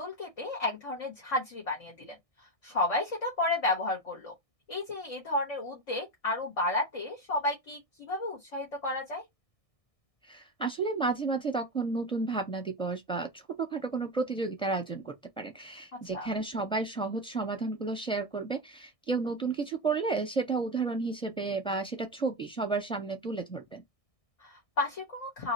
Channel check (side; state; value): right; late; 1.6 ms